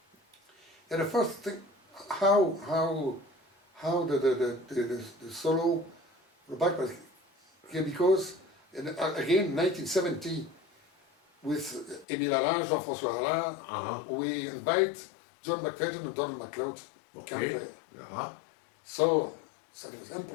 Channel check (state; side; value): drops out; right; at 12.1 s